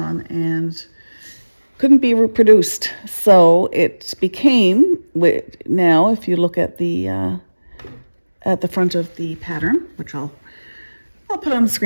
and couldn't be reproduced. So it became, now if you look at the front of the pattern, which I'll put on the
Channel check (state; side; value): inverted; both; correlation -1.00